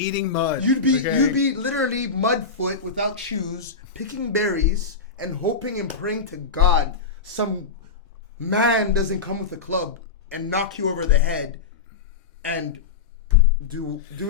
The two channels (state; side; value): quieter; right; 5.0 dB